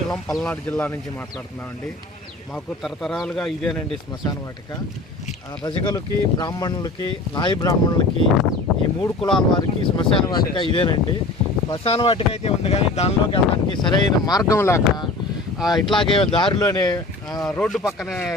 పల్నాడు జిల్లా నుంచి మాట్లాడుతున్నామండి. మాకు తరతరాలుగా ఇదేనండి శ్మశాన వాటిక. రజకులకి, బ్రాహ్మణులకి, నాయ బ్రాహ్మణులకి, ఈ మూడు కులాల వారికి శ్మశాన వాటిక ఇదేనండి. శ్మశాన వాటిక అయితే ఉంది, కానీ దానిలోకి వెళ్ళడానికి సరైన మార్గం లేక ఇట్లాగే దారిలోనే రోడ్డు పక్కనే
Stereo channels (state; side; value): quieter; right; 3.0 dB